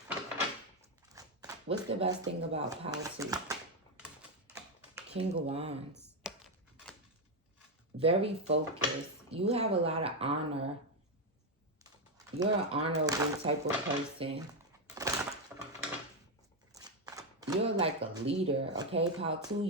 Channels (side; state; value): both; normal; correlation 0.06